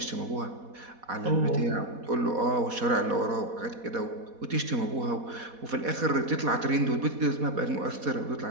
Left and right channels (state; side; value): late; left; 4.1 ms